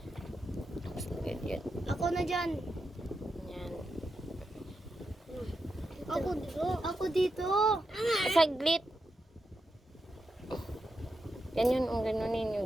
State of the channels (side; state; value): both; normal; correlation 0.86